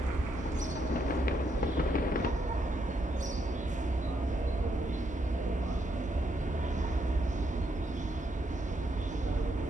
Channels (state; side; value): normal; both; correlation 0.77